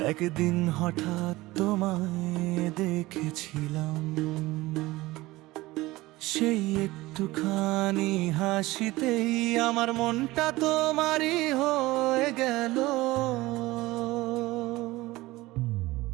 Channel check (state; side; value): quieter; left; 19.2 dB